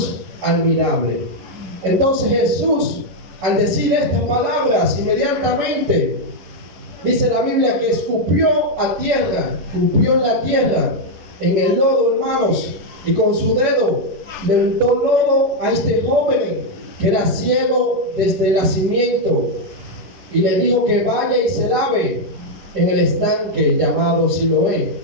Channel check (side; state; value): left; late; 11 ms